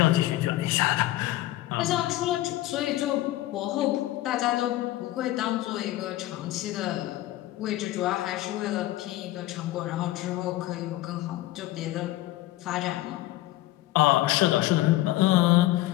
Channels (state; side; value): quieter; right; 16.2 dB